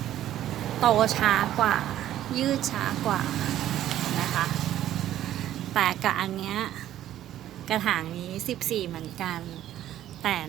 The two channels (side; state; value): left; quieter; 12.4 dB